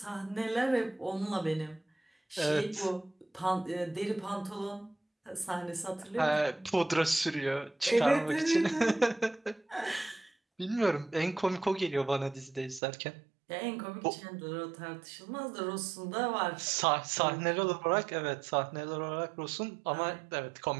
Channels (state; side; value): drops out; left; at 12.8 s